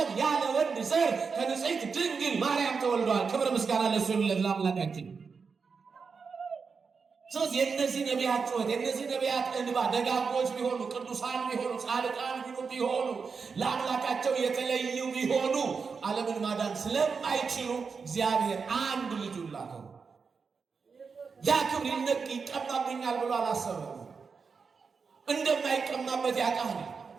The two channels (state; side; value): quieter; left; 5.3 dB